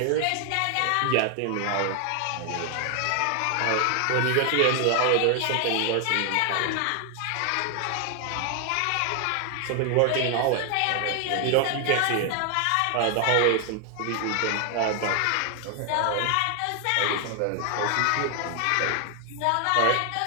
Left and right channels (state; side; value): different; both; correlation 0.00